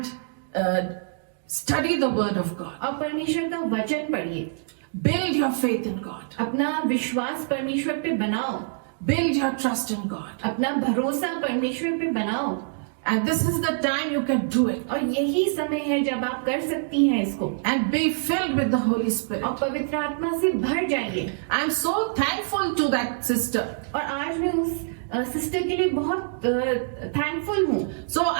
study the word of God. और परमेश्वर का वचन पढ़िए. Build your faith in God. अपना विश्वास परमेश्वर पे बनाओ. Build your trust in God. अपना भरोसा परमेश्वर पे बनाओ. And this is the time you can do it. और यही समय है जब आप कर सकती हैं इसको. And be filled with the Holy Spirit. और पवित्र आत्मा से भर जाइए. I am so thankful to that sister. और आज मैं उस सिस्टर के लिए बहुत थैंकफुल हूँ. So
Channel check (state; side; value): silent; left; digital silence